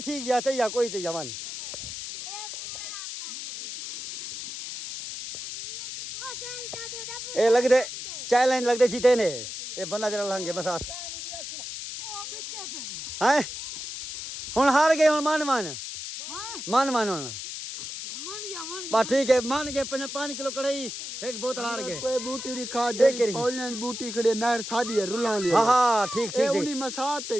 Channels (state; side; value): noise; left; hiss, 8 dB below the sound